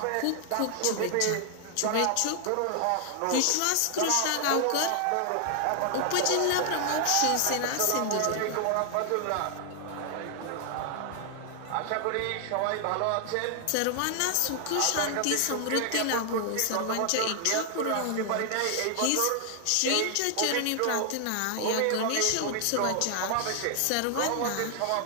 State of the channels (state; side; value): different; both; correlation 0.00